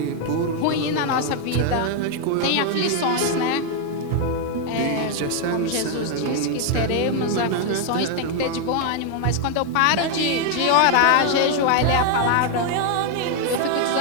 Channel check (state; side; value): different; both; correlation 0.00